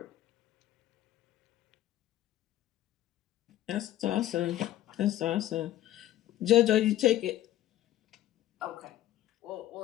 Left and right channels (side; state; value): right; quieter; 13.5 dB